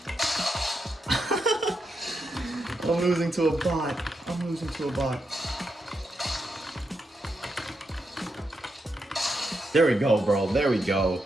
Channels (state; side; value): normal; both; correlation 0.84